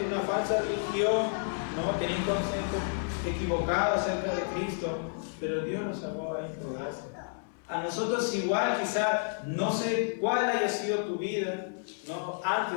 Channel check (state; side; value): silent; right; 57 dB below the other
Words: de una falsa religión, ¿no? Tenía un concepto equivocado acerca de Cristo, pero Dios nos salvó a él por gracia. A nosotros igual, quizá, no sé cuál haya sido tu vida, ¿no?